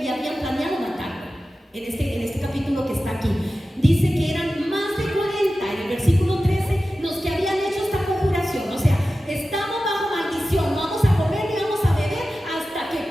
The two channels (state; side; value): normal; both; correlation 0.94